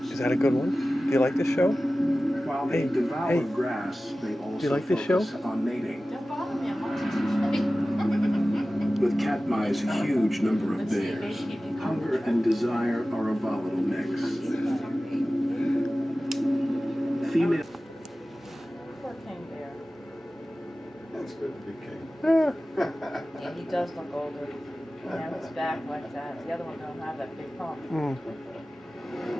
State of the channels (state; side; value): normal; both; correlation 0.96